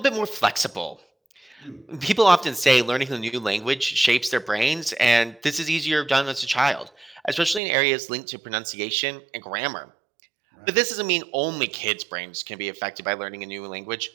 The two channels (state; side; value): drops out; left; at 7.6 s